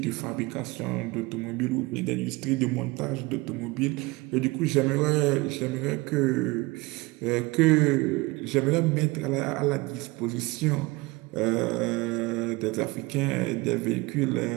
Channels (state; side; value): quieter; left; 23.3 dB